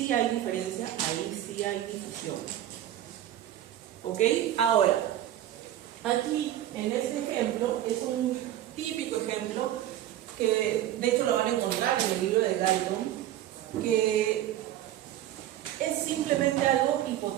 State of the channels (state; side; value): quieter; left; 12.5 dB